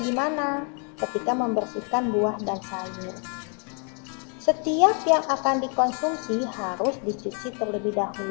gimana ketika membersihkan buah dan sayur? Setiap yang akan dikonsumsi harus dicuci terlebih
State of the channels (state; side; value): quieter; right; 39.8 dB